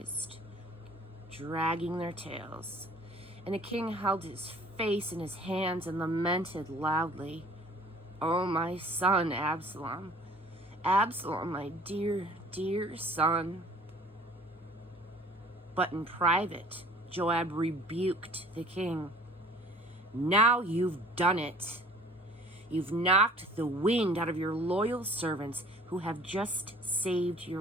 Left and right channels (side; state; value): both; normal; correlation 0.50